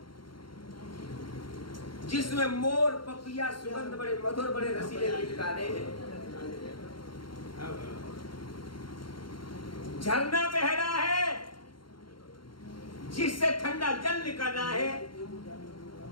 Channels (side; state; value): right; late; 0.73 ms